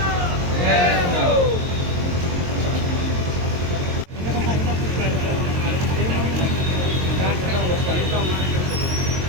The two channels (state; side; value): late; left; 22 ms